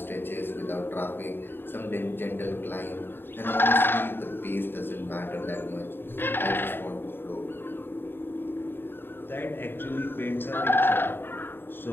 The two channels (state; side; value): late; right; 0.10 ms